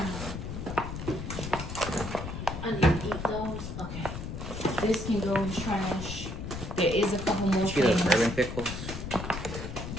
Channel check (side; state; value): left; noise; rumble, 7 dB below the sound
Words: I need to eat those. Okay. This can go in trash. There is a couple more See those things. bourbon pickles? I